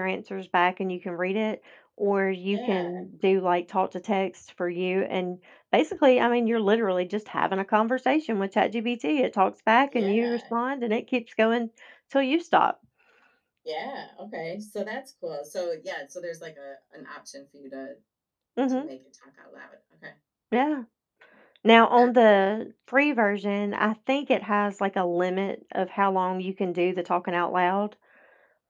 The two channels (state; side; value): identical; both; correlation 1.00